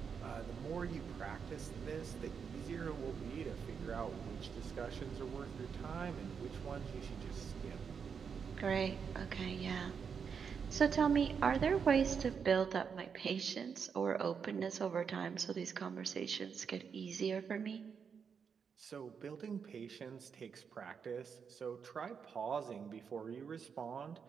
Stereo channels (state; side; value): quieter; left; 6.5 dB